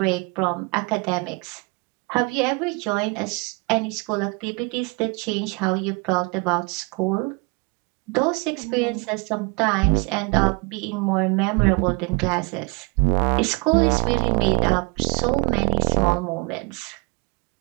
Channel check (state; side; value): quieter; left; 30.0 dB